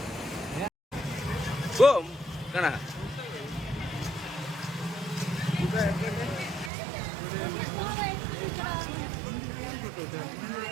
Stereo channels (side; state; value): left; drops out; at 6.7 s